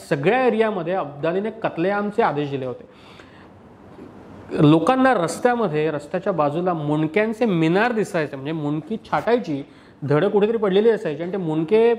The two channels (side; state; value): both; identical; correlation 1.00